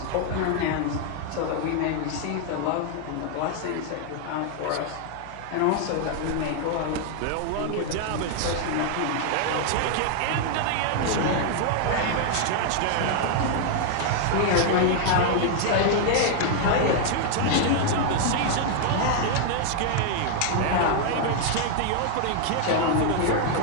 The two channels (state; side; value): different; both; correlation 0.00